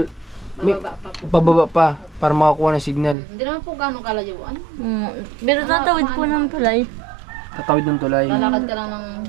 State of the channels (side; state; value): left; drops out; at 3.2 s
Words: may pababa pa para makakuha ng signal. Hindi naman po gano'ng kalayuan. Pero tatawid po ng tulay. Tatawid ng tulay. Lalakad ka lang ng